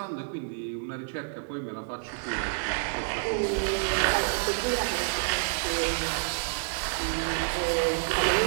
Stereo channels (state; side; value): silent; left; digital silence